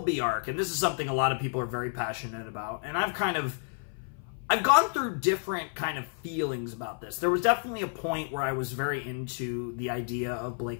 arc, and this is something a lot of people are very passionate about. And I've gone through different kind of feelings about this. There was definitely a point where I was very into the idea of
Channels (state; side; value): silent; right; 55 dB below the other